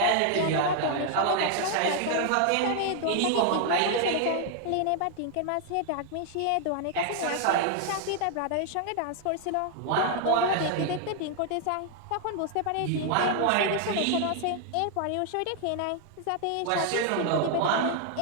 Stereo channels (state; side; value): different; both; correlation 0.00